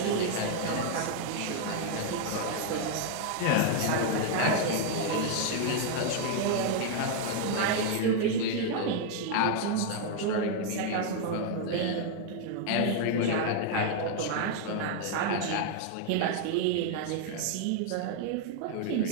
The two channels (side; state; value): both; different; correlation 0.00